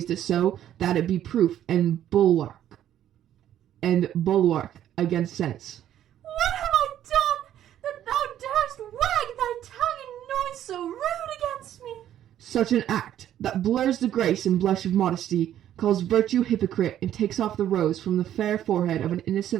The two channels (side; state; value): left; quieter; 11.3 dB